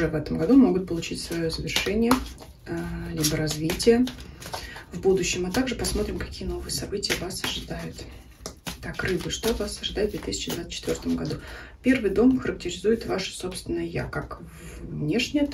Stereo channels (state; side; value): identical; both; correlation 1.00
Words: в этом году могут получить свое завершение, либо развитие в будущем. А также посмотрим, какие новые события вас ожидают. Так, Рыбы, что вас ожидает в 2024 году? Первый дом характеризует ваше собственное «я», как внешнее,